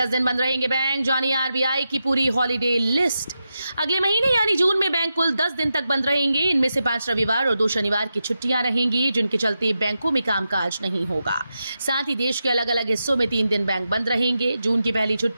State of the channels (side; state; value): both; inverted; correlation -0.89